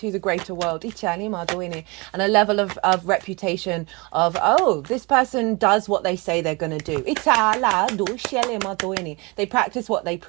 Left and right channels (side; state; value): left; quieter; 27.4 dB